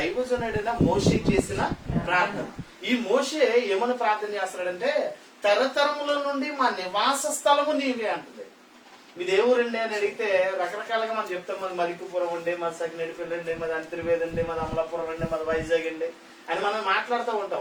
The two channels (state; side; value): identical; both; correlation 1.00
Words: మోషే చేసిన ప్రార్థన. ఈ మోషే ఏమని ప్రార్థన చేస్తున్నాడంటే, తరతరముల నుండి మా నివాస స్థలము నీవే అంటుంది. మీ దేవురండి అని అడిగితే రకరకాలుగా మనం చెప్తాం. మాది మలికిపురం ఉండే, మాది సకినేడిపల్లి అండి, మాది అంతర్వేది అండి, మాది అమలాపురం అండి, మాది వైజాగ్ అండి అని మనం మాట్లాడుతూ